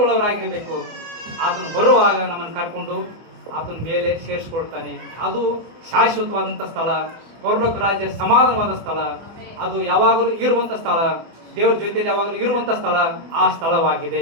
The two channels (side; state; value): left; late; 24 ms